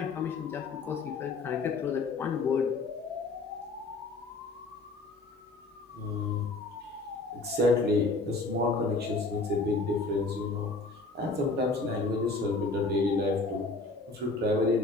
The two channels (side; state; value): right; quieter; 3.4 dB